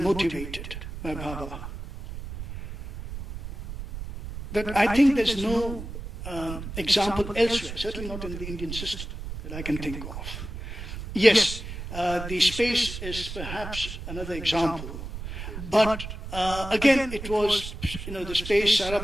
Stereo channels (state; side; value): noise; right; rumble, 9 dB below the sound